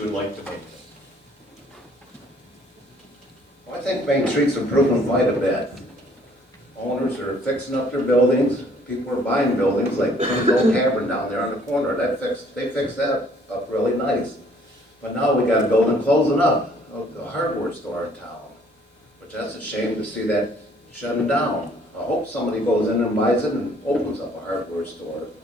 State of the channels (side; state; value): both; normal; correlation 0.60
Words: would like to make? Well, I think Main Street's improving quite a bit. Owners are fixing up their buildings. People are buying buildings like the old tavern down there on the corner. They fixed that up really nice. But now we got a building closing up, a hardware store in town, which that's a shame to see that shutting down. I hope somebody goes in and buys it and opens up a hardware store.